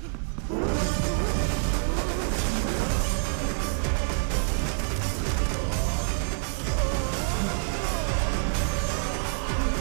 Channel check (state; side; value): silent; left; 57 dB below the other